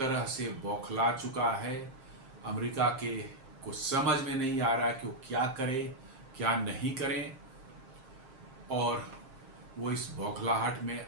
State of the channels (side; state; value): left; late; 7.5 ms